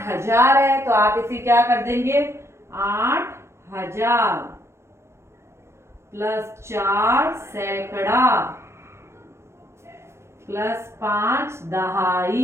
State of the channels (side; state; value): left; late; 0.13 ms